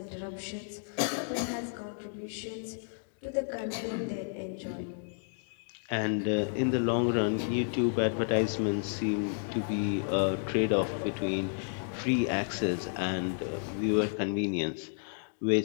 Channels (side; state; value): right; silent; digital silence